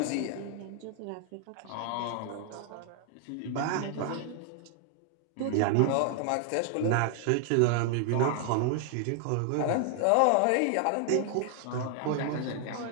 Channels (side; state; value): both; different; correlation 0.00